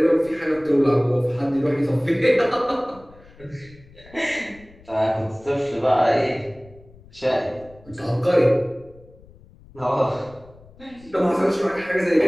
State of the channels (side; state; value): left; noise; rumble, 24 dB below the sound